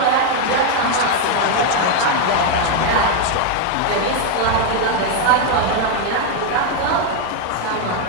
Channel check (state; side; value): different; both; correlation 0.01